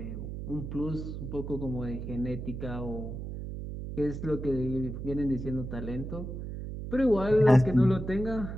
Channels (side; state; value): right; noise; hum, 7 dB below the sound